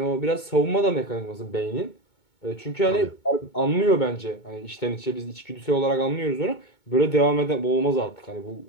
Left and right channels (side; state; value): right; late; 2.2 ms